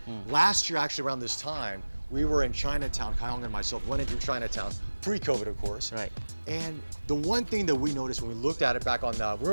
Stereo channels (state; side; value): inverted; both; correlation -1.00